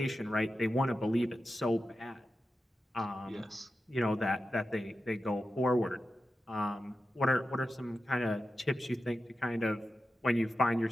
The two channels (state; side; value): normal; both; correlation 0.91